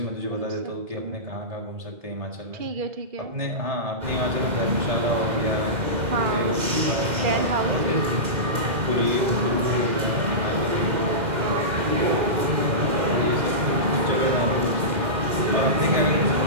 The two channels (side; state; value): left; late; 2.0 ms